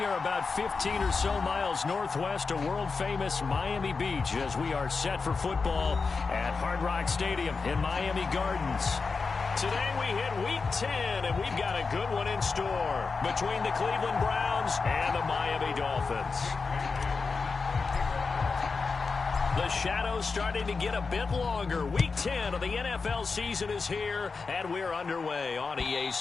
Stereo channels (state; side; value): quieter; right; 4.6 dB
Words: about 15 or so miles northwest of world-famous Miami Beach as we are set for football at Hard Rock Stadium in Miami Gardens. Today we hit Week 10, and we've got a good one in store between the Cleveland Browns and the Miami Dolphins. The shadow's starting to get a bit longer. Week 10 of the NFL season is here, and we're underway on EA